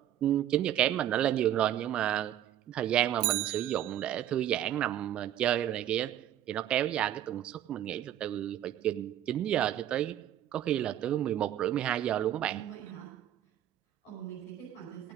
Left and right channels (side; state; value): left; quieter; 11.6 dB